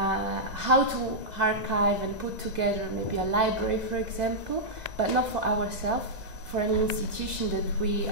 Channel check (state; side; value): late; left; 2.2 ms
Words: How to archive and put together maybe a library, for example, but not for ourselves, for an institution that we